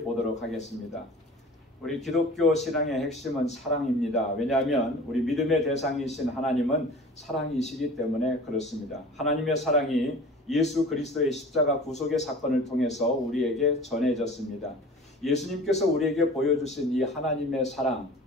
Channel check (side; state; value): both; normal; correlation 0.41